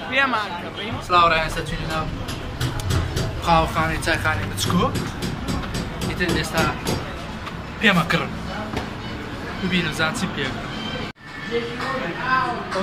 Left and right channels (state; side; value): identical; both; correlation 1.00